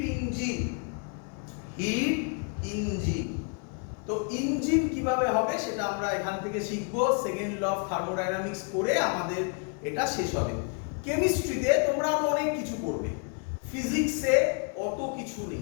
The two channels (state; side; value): quieter; right; 38.7 dB